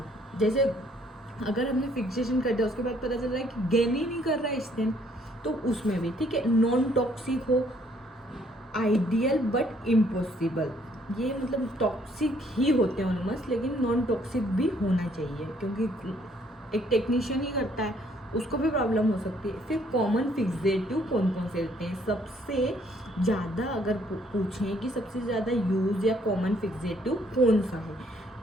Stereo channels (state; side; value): normal; both; correlation 0.65